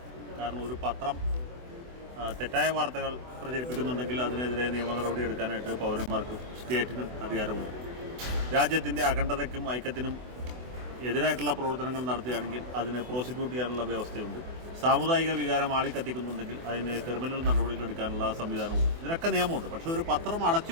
കാരണം ഒരു പത്രം തെറ്റായ വാർത്തകൾ പ്രചരിപ്പിക്കുന്നുണ്ടെങ്കിൽ അതിനെതിരെ നിയമ നടപടി എടുക്കാനായിട്ട് പൗരന്മാർക്കും സ്റ്റേറ്റിനും അധികാരമുണ്ട്. രാജ്യത്തിൻ്റെ അഖണ്ഡതയ്ക്കും ഐക്യത്തിനും എതിരായിട്ടുള്ള പ്രവർത്തനങ്ങൾ നടത്തുകയാണെങ്കിൽ അതിനെ പ്രോസിക്യൂട്ട് ചെയ്യാനുള്ള വ്യവസ്ഥയുണ്ട്. സാമുദായിക വികാരം ആളിക്കത്തിക്കുന്നുണ്ടെങ്കിൽ അതിന് ക്രിമിനൽ നടപടികൾ എടുക്കാനുള്ള സംവിധാനമുണ്ട്. ഇതിനൊക്കെ നിയമമുണ്ട്. പക്ഷേ ഒരു പത്രം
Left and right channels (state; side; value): late; left; 24 ms